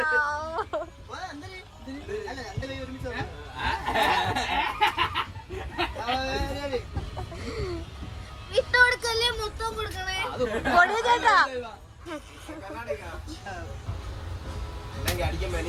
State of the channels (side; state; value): both; identical; correlation 1.00